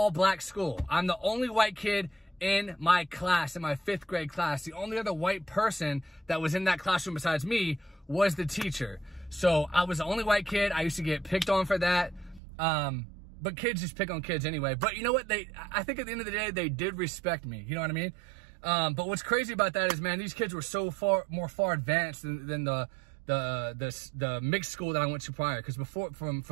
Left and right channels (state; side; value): drops out; left; at 12.4 s